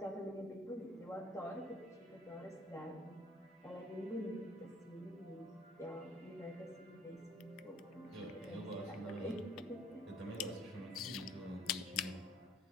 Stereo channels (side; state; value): both; normal; correlation 0.58